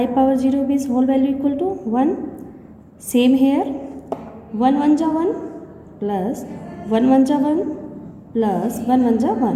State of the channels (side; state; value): both; identical; correlation 1.00